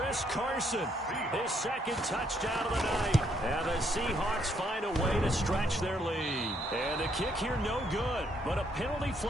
Carson, his 2nd touchdown of the night. And the Seahawks find a way to stretch their lead. And the kick here no good, but a penalty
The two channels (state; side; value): normal; both; correlation 0.71